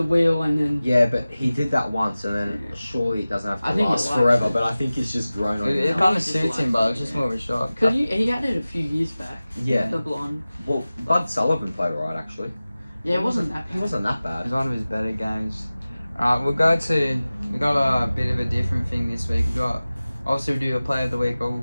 wheel and then Yeah, but he did that once, and then surely it doesn't have I to think it last likes forever. it. But I think it's just grown on It him. kind of It's just suits him, like- but it's just more of a shock. because he had it a few years back. Yeah. The blonde. Well, Bud Sullivan played alright actually. Yeah, it wasn't that He bad. wasn't that It bad. was one of his better games. Alright, we got a bit of a different thing this week. We got, obviously we do a player of the week, but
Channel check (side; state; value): both; inverted; correlation -0.97